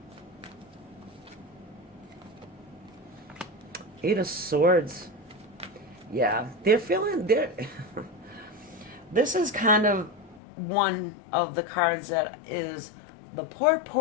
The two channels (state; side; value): drops out; right; at 10.4 s